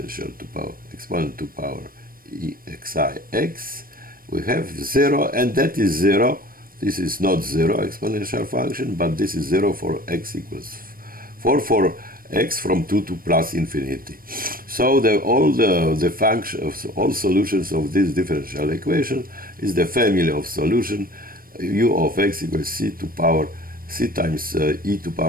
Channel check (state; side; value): late; left; 0.41 ms